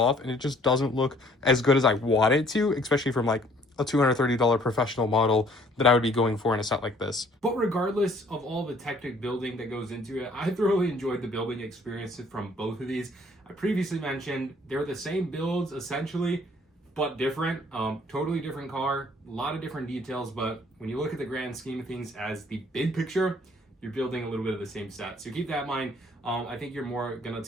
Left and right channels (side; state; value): both; normal; correlation 0.59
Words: and it just doesn't look as good as I want it to, especially from like a $230 professional model that I would be going for in a set like this. But regardless of all the Technic building that goes into it, I thoroughly enjoyed the building experience from both of these. I previously mentioned they're the same builds essentially, but different. Totally different car, a lot of different details, but when you look at the grand scheme of things as the big picture, you're building a little bit of the same set. So keep that in mind. I think you're more gonna